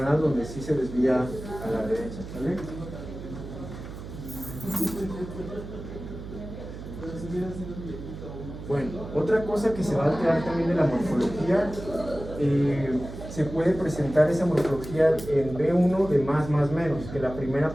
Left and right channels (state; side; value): noise; right; hum, 11 dB below the sound